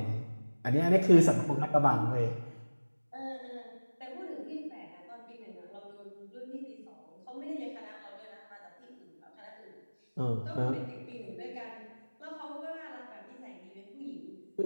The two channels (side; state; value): both; inverted; correlation -1.00